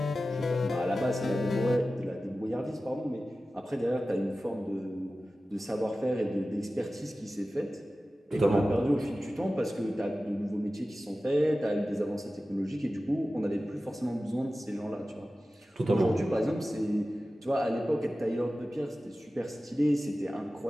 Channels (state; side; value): normal; both; correlation 0.95